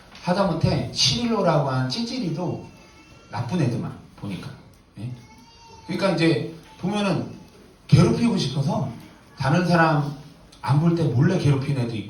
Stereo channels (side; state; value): both; identical; correlation 1.00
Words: 하다못해 시릴로라고 하는 찌질이도 나쁜 애들만 보니까. 예? 그러니까 이제 보면은 괴롭히고 싶어서 다른 사람 안 볼 때 몰래 괴롭히는 애도